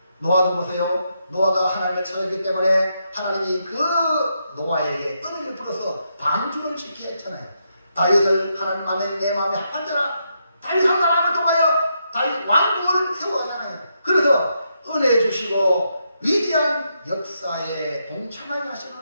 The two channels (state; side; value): inverted; both; correlation -0.81